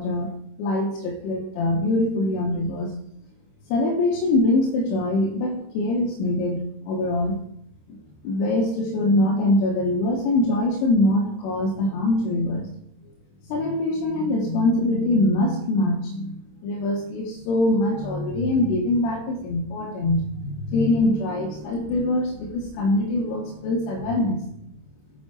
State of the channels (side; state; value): right; late; 26 ms